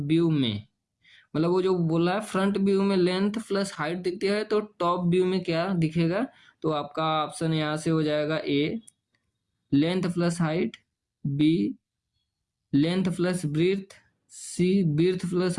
में, मतलब वो जो बोला है फ्रंट व्यू में लेंथ प्लस हाइट दिखती है, तो टॉप व्यू में क्या दिखेगा? तो आपका ऑप्शन यहाँ से हो जाएगा A length plus height, B length plus breadth, C breadth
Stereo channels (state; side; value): identical; both; correlation 1.00